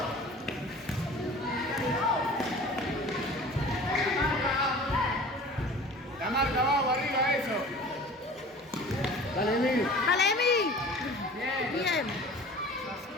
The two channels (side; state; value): both; normal; correlation 0.43